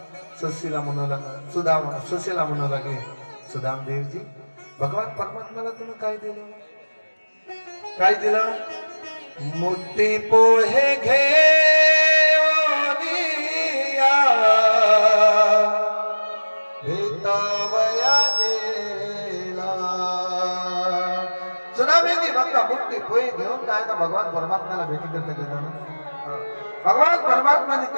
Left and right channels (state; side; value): inverted; both; correlation -1.00